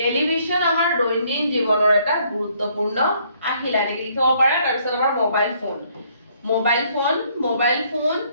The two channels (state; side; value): inverted; both; correlation -0.66